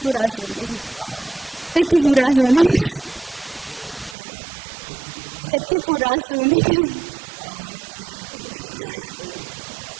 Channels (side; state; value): left; drops out; at 4.2 s